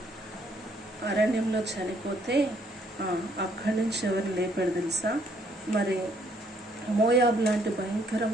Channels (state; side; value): normal; both; correlation 0.67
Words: అరణ్యంలో చనిపోతే అక్కడి నుంచి ఎవరిని లేపాడు తెలుసా, మరి మోయాబు లాంటి